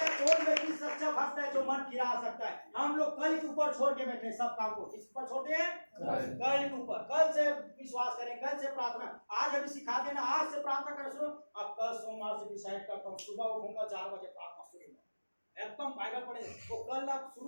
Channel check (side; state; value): both; inverted; correlation -1.00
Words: हैं कौन व्यक्ति सच्चा भक्त है जो मन फिरा सकता है। हम लोग कल के ऊपर छोड़ के बैठे सब काम को, किस पर छोड़ते हैं? कल के ऊपर। कल से विश्वास करें, कल से प्रार्थना। आज अभी सिखा देना, आज से प्रार्थना करना शुरू। अब कल सोमवार से डिसाइड करता हूँ, सुबह उठूंगा 4 बजे प्रार्थना शुरू, एकदम बाइबल पढ़े। तो कल आप